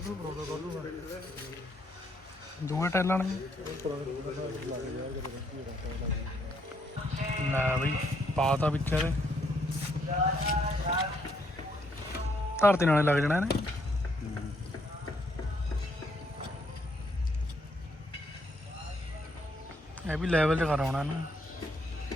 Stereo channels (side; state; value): both; normal; correlation 0.72